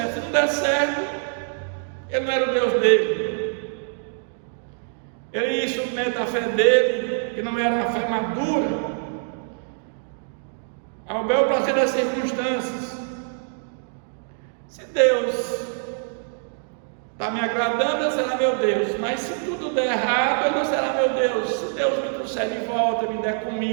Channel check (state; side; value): silent; left; 62 dB below the other